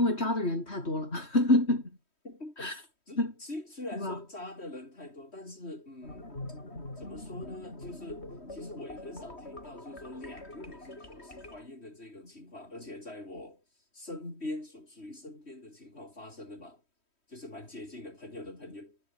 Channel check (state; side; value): late; right; 3.1 ms